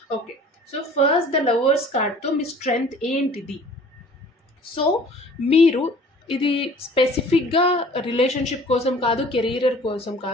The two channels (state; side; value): normal; both; correlation 0.49